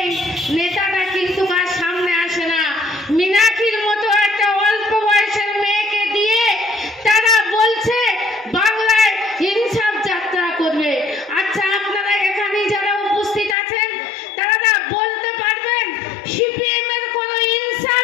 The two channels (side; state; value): right; drops out; at 13.6 s